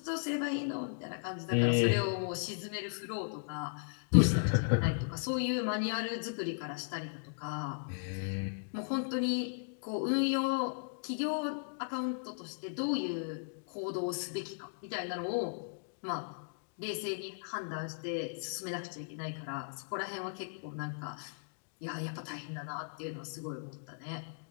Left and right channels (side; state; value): right; silent; digital silence